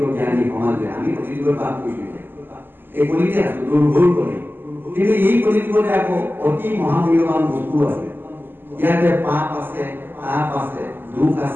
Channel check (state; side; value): late; left; 0.096 ms